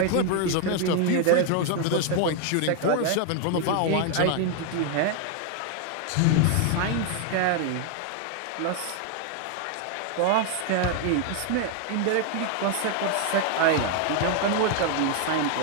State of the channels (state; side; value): different; both; correlation 0.00